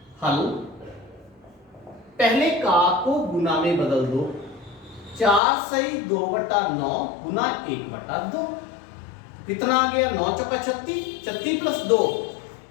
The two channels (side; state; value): right; drops out; at 5.4 s